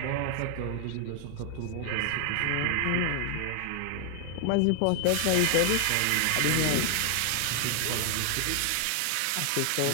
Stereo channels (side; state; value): both; different; correlation 0.00